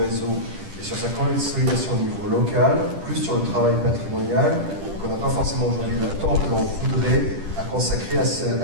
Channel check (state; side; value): late; left; 10 ms